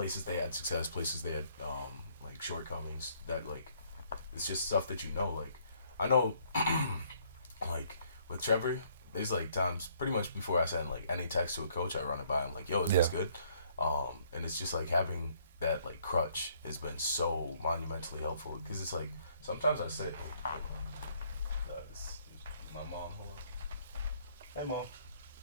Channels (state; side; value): inverted; both; correlation -0.65